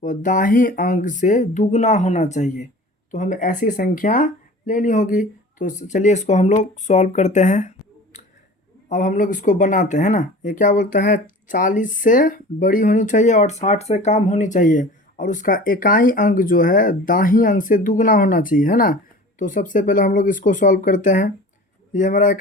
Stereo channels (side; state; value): both; normal; correlation 0.40